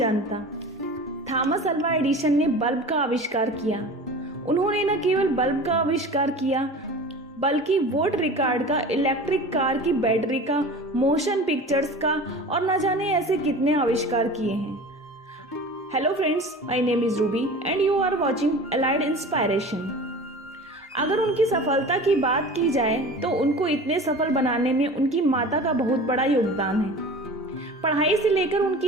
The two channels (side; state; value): both; normal; correlation 0.37